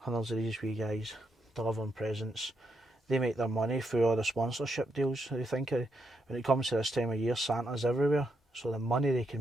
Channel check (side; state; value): both; normal; correlation 0.80